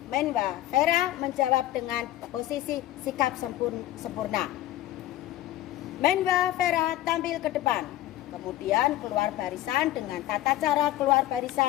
Menba Vera menjawab dengan posisi sikap sempurna. Menba Vera tampil ke depan, kemudian keluar barisan dengan tata cara keluar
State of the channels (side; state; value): right; quieter; 14.7 dB